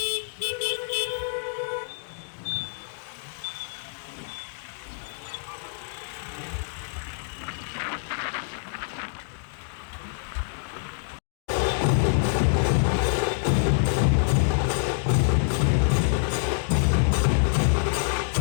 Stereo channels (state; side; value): silent; right; digital silence